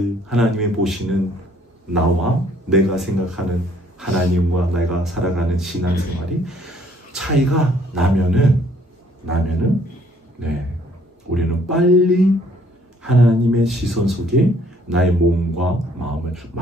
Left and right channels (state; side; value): normal; both; correlation 0.62